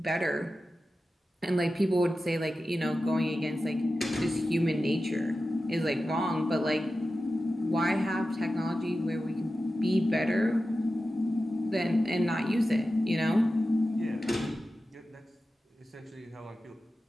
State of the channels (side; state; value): both; normal; correlation 0.93